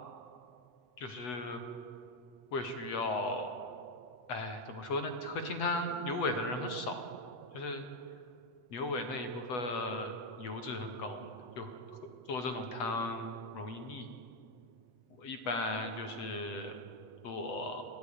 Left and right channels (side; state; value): right; late; 8.0 ms